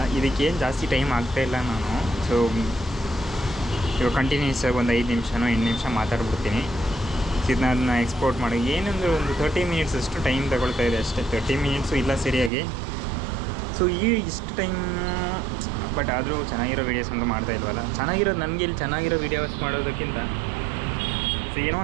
ಇದಕ್ಕೇನು ಜಾಸ್ತಿ ಟೈಮ್ ಆಗ್ತಾಯಿಲ್ಲ ನಾನು. ಸೊ ಇವಾಗ ಕಂಟಿನ್ಯೂಸ್ ಆಗಿ ಒಂದು 5 ನಿಮಿಷನೋ 8 ನಿಮಿಷ ಮಾತಾಡ್ಬಿಡ್ತೀನಿ. ಇದನ್ನ ಅದನ್ನ ಎಕ್ಸ್ಪೋರ್ಟ್ ಮಾಡಿ ಏನಂದರೆ ಒಂದು 30 ಮಿನಿಟ್ಸ್ ಅಷ್ಟು ಟೈಮ್ ತಗೊಳ್ತಾಯಿದೆ ಅಷ್ಟೇ. 30 ಮಿನಿಟ್ಸು ಇಲ್ಲ ಸರಿಯಾಗಿ. ಸೊ ಇಷ್ಟು ಟೈಮ್ ಬಟ್ ಆದರೂ ಚೆನ್ನಾಗಿರೋ ವೀಡಿಯೋಸ್ ಅಂತೂ ಮಾಡ್ತಾಯಿಲ್ವಲ್ಲ. ಚೆನ್ನಾಗಿರೋದು ನನಗೆ ಇಲ್ಲಿ ಚೆನ್ನಾಗಿರೋ ವೀಡಿಯೋಸ್ ಮಾಡೋದಕ್ಕಿಂತ ಸೊ ಏನೋ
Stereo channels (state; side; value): drops out; left; at 12.5 s